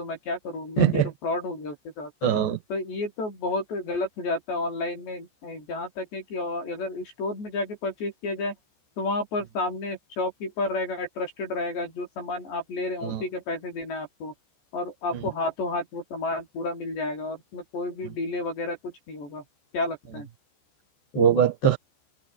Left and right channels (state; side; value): late; right; 14 ms